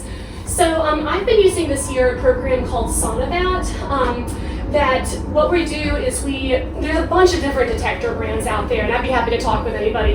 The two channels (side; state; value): both; identical; correlation 1.00